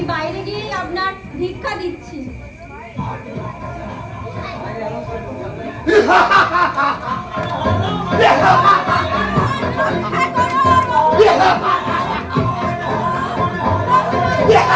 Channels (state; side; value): identical; both; correlation 1.00